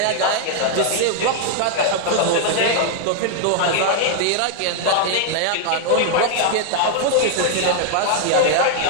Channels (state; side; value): different; both; correlation 0.00